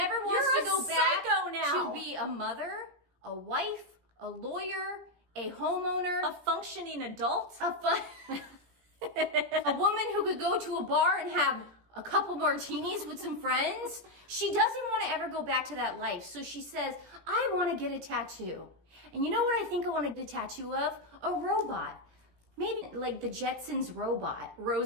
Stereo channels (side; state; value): left; late; 17 ms